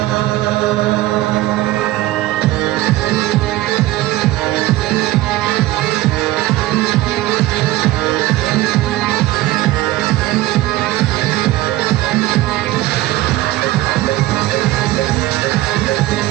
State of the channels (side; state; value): left; quieter; 16.7 dB